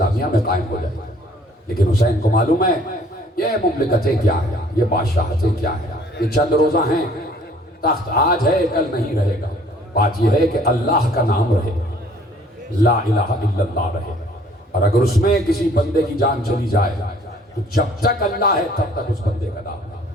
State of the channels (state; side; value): normal; both; correlation 0.57